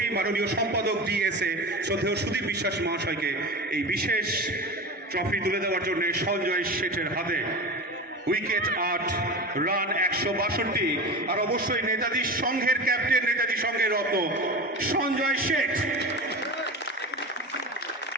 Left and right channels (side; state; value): both; normal; correlation 0.27